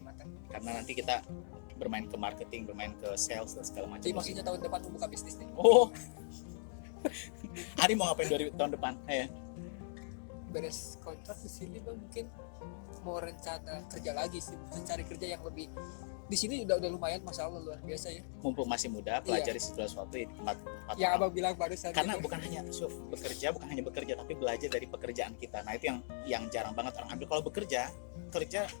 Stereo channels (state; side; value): silent; right; digital silence